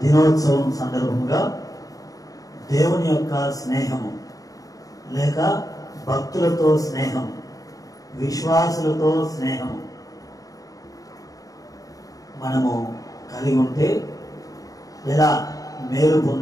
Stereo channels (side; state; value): right; late; 0.17 ms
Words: దినోత్సవం సందర్భంగా దేవుని యొక్క స్నేహము లేక భక్తులతో స్నేహం, విశ్వాసులతో స్నేహం మనము కలిగి ఉంటే ఎలా మేలు